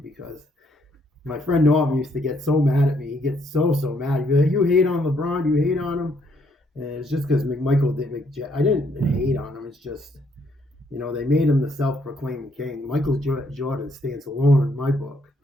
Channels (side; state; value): both; normal; correlation 0.70